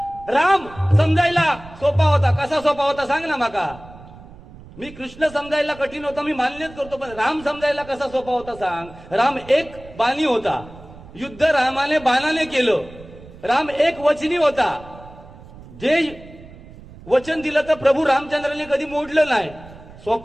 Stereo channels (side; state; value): right; noise; rumble, 19 dB below the sound